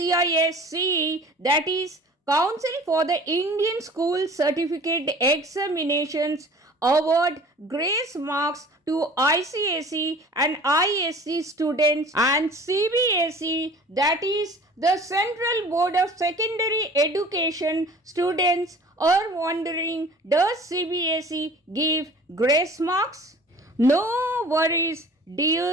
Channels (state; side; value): normal; both; correlation 0.46